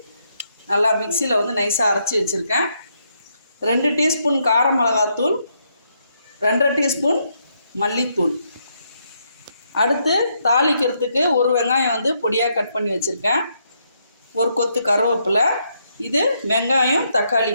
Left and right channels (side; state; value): both; inverted; correlation -0.76